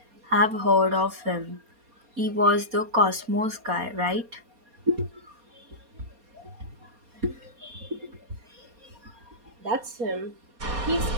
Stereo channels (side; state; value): left; late; 4.2 ms